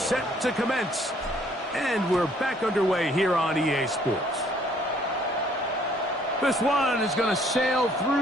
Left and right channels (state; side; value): normal; both; correlation 0.62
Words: to commence. And we're back underway here on EA Sports. This one is going to sail